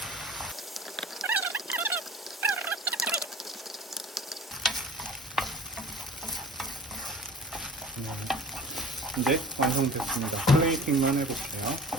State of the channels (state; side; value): normal; both; correlation 0.42